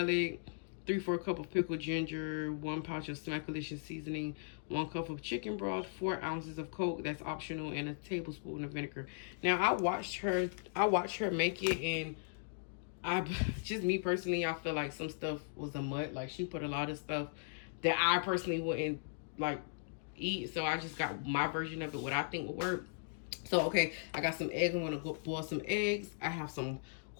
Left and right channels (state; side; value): silent; right; digital silence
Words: 3/4 cup of pickled ginger, 1 pouch of Smackalicious seasoning, 1 cup of chicken broth, 4 ounces of Coke, that's optional, and a tablespoon of vinegar. Now I watched her make it, and just me personally, I feel like some stuff was a mutt. Like, she put a lot of stuff that I personally wouldn't like eat. So I just got my version of it, what I think would work. So okay, I got some eggs. I'm gonna go boil some eggs. I have some